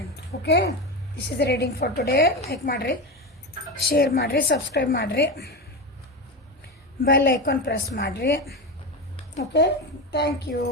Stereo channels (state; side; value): normal; both; correlation 0.19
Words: Okay, this is reading for today. Like ಮಾಡಿರಿ, ಶೇರ್ ಮಾಡಿರಿ, ಸಬ್ಸ್ಕ್ರೈಬ್ ಮಾಡಿರಿ, ಬೆಲ್ ಐಕಾನ್ ಪ್ರೆಸ್ ಮಾಡಿರಿ. Okay, thank you